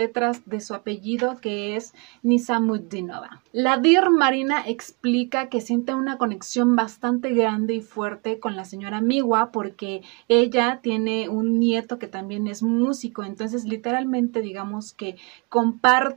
de su apellido, que es Nizamudinova. La Deer Marina explica que siente una conexión bastante grande y fuerte con la señora Miwa porque ella tiene un nieto que también es músico. Entonces, literalmente, digamos que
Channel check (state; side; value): quieter; left; 31.6 dB